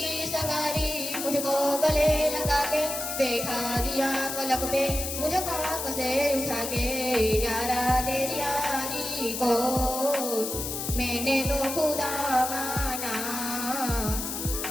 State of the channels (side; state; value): left; noise; hiss, 4 dB below the sound